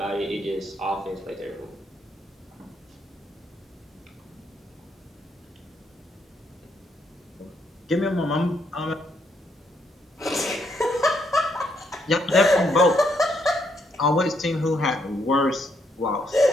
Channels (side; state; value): both; normal; correlation 0.75